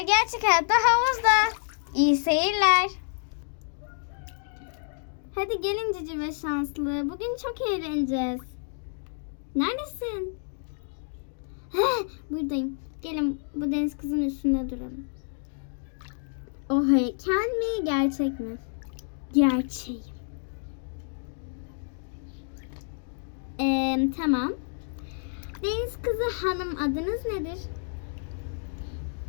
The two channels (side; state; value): right; silent; digital silence